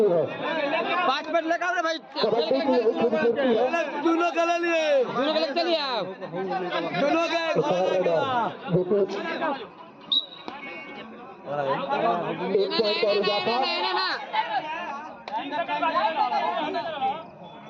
है। 5 मिनट लगा रे भाई, कबड्डी की यही खूबसूरती है। दोनों के लिए चलिए आप, दोनों के एक पॉइंट का इजाफा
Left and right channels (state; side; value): identical; both; correlation 1.00